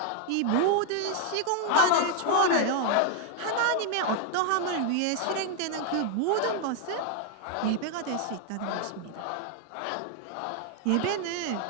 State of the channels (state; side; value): different; both; correlation 0.00